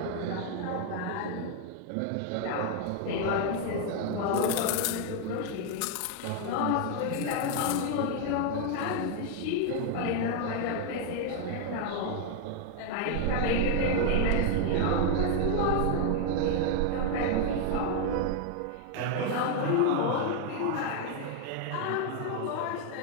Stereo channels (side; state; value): both; different; correlation 0.00